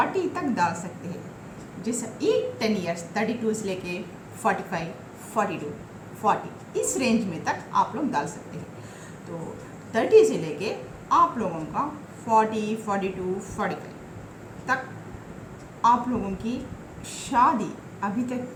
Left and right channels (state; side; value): identical; both; correlation 1.00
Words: तक डाल सकते हैं। जैसे 10 ईयर्स 32 से लेके 45, 42, 40 इस रेंज में तक आप लोग डाल सकते हैं। तो 30 से लेके आप लोगों का 40, 42, 45 तक आप लोगों की शादी अभी तक